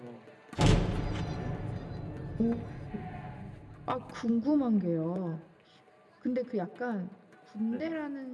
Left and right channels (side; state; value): both; identical; correlation 1.00